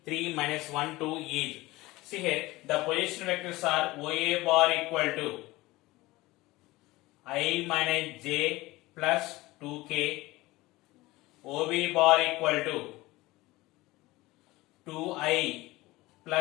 3 minus 1 2 is. See here, the position vectors are OA bar equal to I minus J plus 2K, OB bar equal to 2I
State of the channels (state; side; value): quieter; right; 19.7 dB